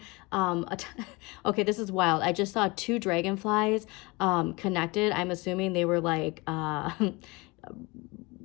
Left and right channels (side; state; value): right; quieter; 25.3 dB